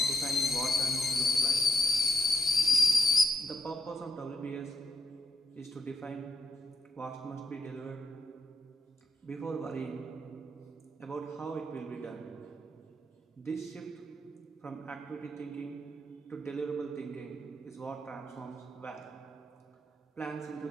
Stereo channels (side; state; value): both; normal; correlation 0.78